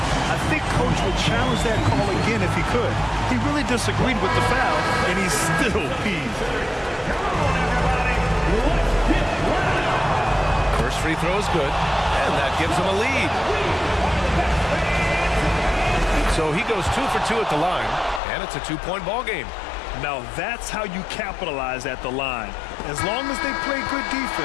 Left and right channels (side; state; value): right; drops out; at 18.2 s